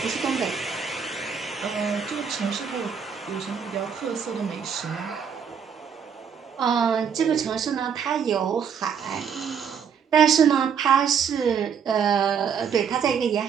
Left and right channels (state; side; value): quieter; left; 7.1 dB